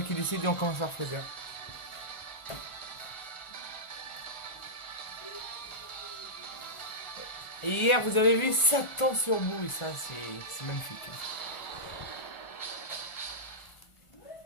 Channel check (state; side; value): late; right; 1.4 ms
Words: qui décide et on commence par Freezer. Et hier vous avez vu Satan sur bout et ça c'est magnifique, hein.